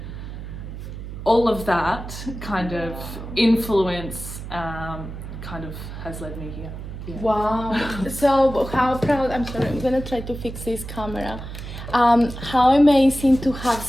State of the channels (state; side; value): noise; right; hum, 10 dB below the sound